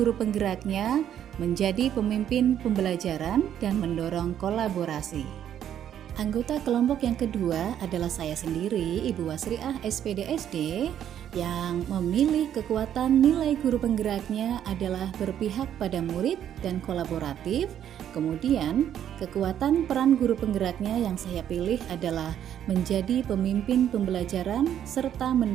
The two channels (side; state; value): left; quieter; 10.1 dB